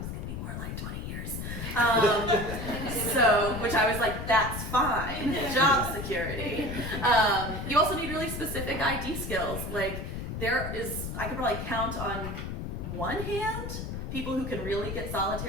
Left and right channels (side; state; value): left; noise; rumble, 5 dB below the sound